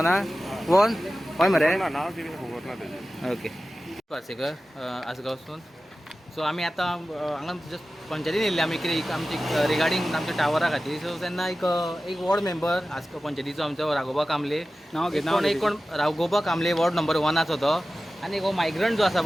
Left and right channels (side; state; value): both; normal; correlation 0.95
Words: हय मरे ना नाव कितें खबर ना तेजें ओके पार्सेकर आसगांवसून सो आमी आतां हांगा जस्ट पंचायतीन येयल्ले आमी कितें आमची रिगार्डींग आमच्या टावरा खातीर सो तेन्ना एक वॉर्ड मेंबर आसगांव पंचायतीचो आमचो राघोबा कामले नाव घे एक कोण राघोबा कामले वॉर्ड नंबर 1 तो आनी हो मायग्रंट जो आसा